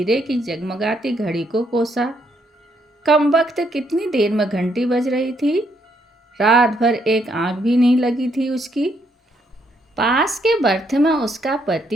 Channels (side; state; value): both; normal; correlation 0.73